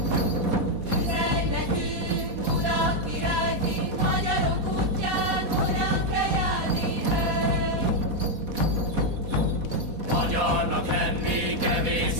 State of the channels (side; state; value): left; late; 4.1 ms